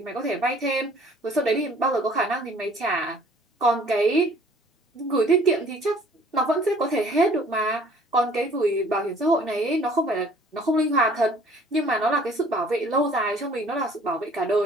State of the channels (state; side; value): normal; both; correlation 0.54